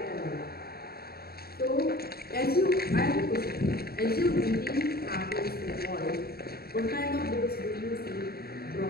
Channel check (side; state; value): right; late; 0.45 ms